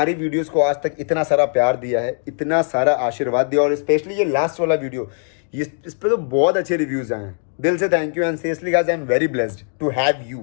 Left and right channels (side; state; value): right; silent; digital silence